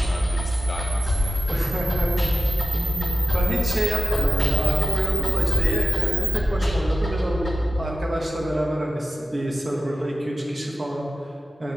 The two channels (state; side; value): normal; both; correlation 0.95